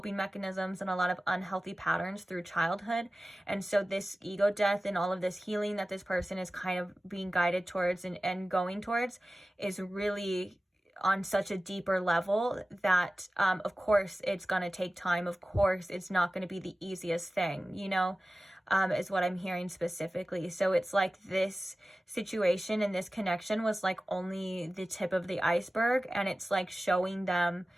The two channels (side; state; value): both; normal; correlation 0.96